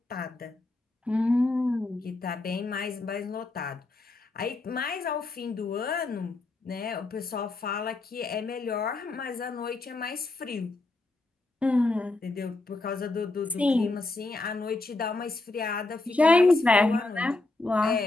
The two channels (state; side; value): quieter; right; 3.1 dB